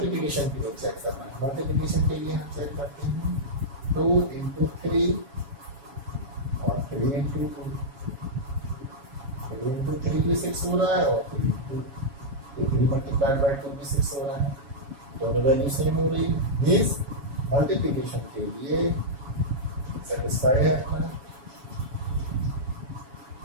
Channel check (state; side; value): late; left; 7.2 ms